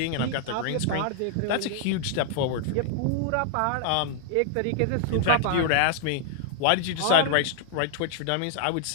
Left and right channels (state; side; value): different; both; correlation -0.01